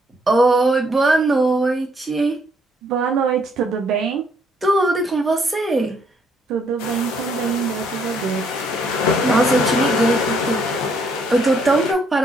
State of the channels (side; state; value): both; normal; correlation 0.69